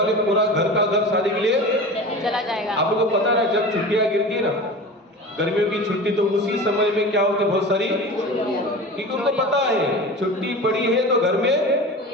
पूरा घर का घर शादी के लिए चला जाएगा। आप लोगों को पता है जब छुट्टियां गिरती ना, गर्मियों की छुट्टी, तो उसी समय में क्या होती है, बहुत सारी, क्योंकि उनको पता है छुट्टी पड़ी है तो घर में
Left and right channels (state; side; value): normal; both; correlation 0.33